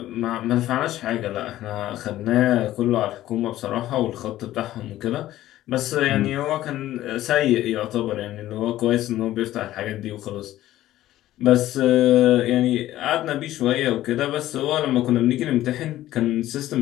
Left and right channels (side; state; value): right; quieter; 14.4 dB